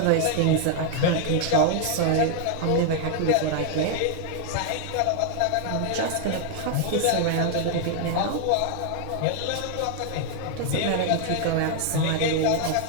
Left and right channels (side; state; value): both; different; correlation 0.00